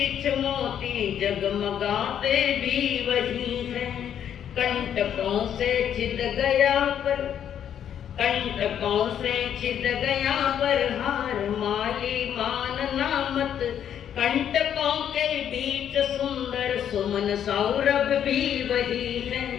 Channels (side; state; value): right; quieter; 9.4 dB